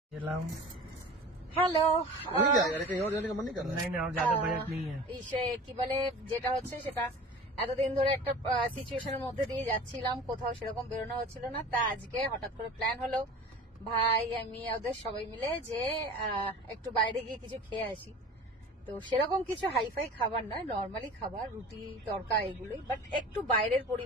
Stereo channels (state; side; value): normal; both; correlation 0.39